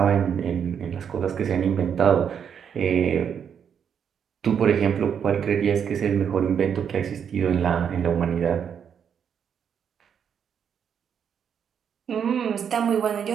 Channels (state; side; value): quieter; left; 7.8 dB